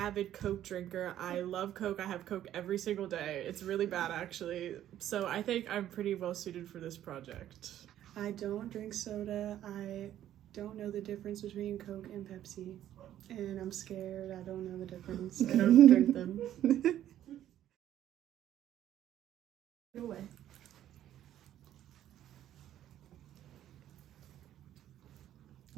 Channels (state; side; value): quieter; left; 11.8 dB